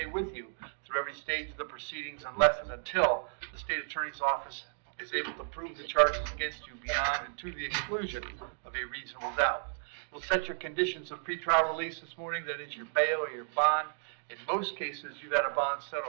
with you through every stage of the proceedings unless and until the state attorney's office is able to prove the charges against you beyond and to the exclusion of a reasonable doubt. We'll set your conditions of pretrial release this morning, that is your bail or your bond. In most cases, you've had a bond set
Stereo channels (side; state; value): left; silent; digital silence